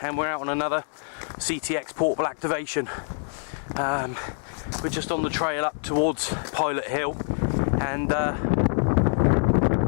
and we're out on another CTX portable activation. We're just on the trail up towards Pilot Hill and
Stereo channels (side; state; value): right; silent; digital silence